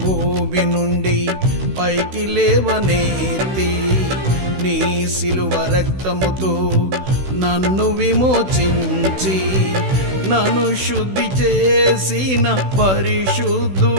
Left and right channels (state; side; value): late; left; 16 ms